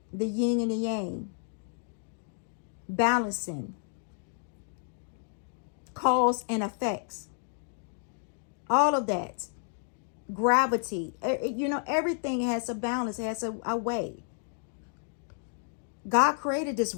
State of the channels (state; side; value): silent; right; 57 dB below the other